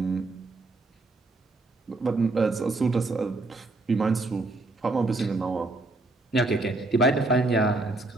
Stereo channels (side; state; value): left; quieter; 3.0 dB